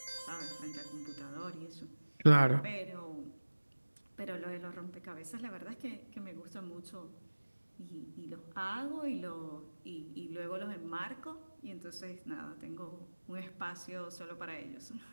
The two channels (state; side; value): inverted; both; correlation -1.00